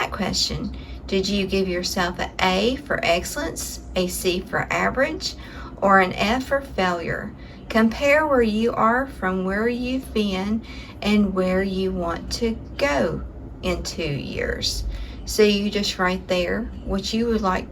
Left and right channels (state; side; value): identical; both; correlation 1.00